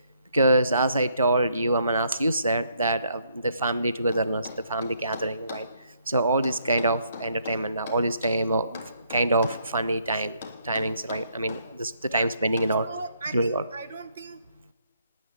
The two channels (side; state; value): both; inverted; correlation -0.70